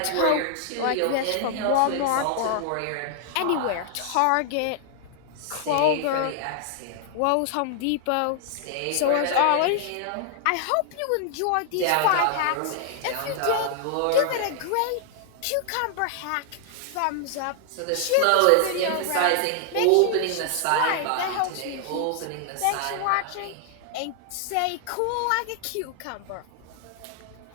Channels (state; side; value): different; both; correlation 0.00